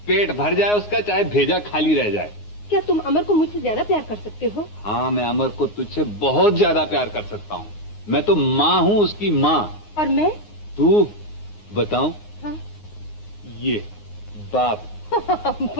पेट भर जाए उसका, चाहे भेजा खाली रह जाए। क्या तुम अमर को मुझसे ज्यादा प्यार कर सकते हो? हाँ मैं अमर को तुझसे बहुत ज्यादा प्यार कर सकता हूँ। मैं तो माँ हूँ उसकी माँ। और मैं? तू बताऊं? हाँ। ये बाप।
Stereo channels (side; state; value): right; late; 9.6 ms